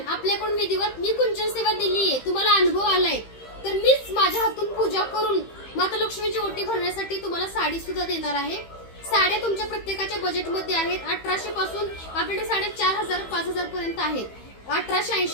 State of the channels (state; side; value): late; right; 15 ms